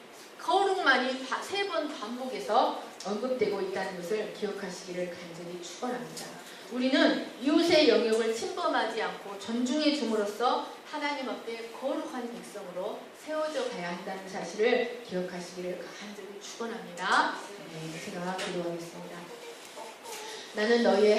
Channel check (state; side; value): identical; both; correlation 1.00